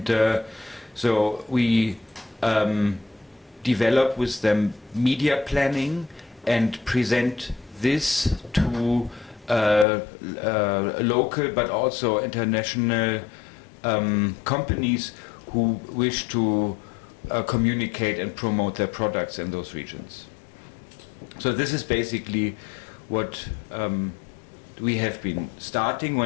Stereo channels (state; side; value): drops out; right; at 9.9 s